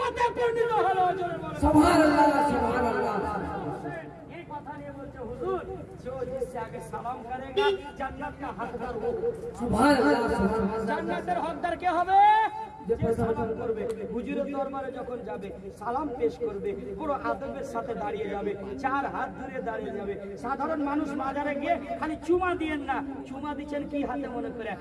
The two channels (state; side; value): identical; both; correlation 1.00